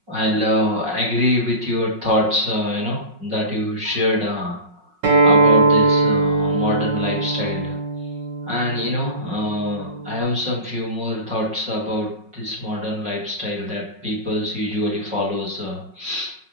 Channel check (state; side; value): late; left; 5.4 ms